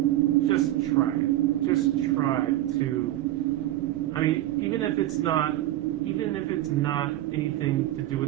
just try it. Just try to, even if it's not anything to do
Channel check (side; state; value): left; quieter; 14.8 dB